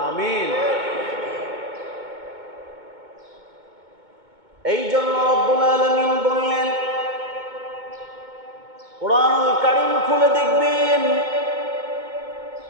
আমিন। এই জন্য রব্বুল আলামিন বললেন, কোরআনুল কারীম খুলে দেখবেন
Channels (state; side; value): late; left; 2.2 ms